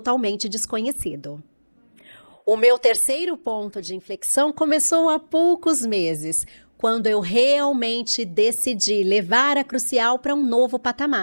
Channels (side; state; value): both; inverted; correlation -1.00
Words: desconhecido. O meu terceiro ponto de inflexão começou há poucos meses, quando eu realmente decidi levar a Crucial para um novo